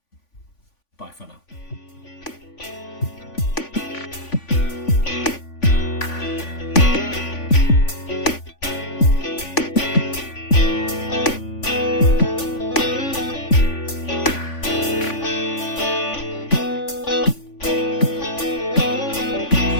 Bye for now.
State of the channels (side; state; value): right; late; 3.5 ms